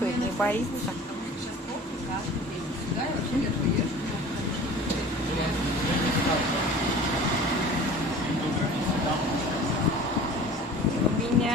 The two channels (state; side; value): normal; both; correlation 0.42